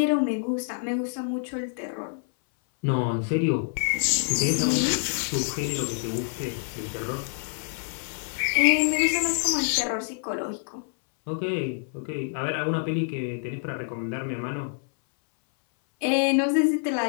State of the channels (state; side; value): silent; right; 60 dB below the other